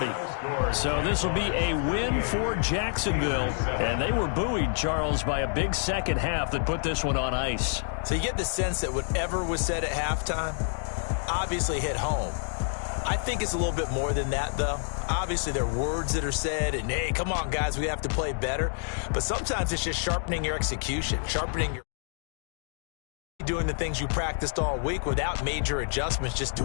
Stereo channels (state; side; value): silent; right; digital silence